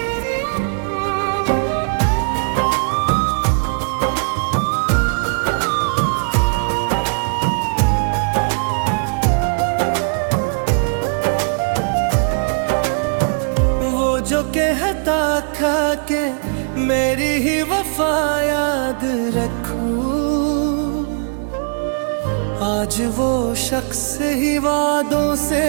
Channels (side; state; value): left; silent; digital silence